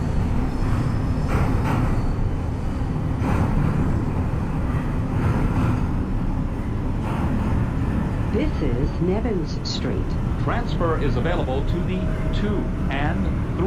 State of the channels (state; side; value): identical; both; correlation 1.00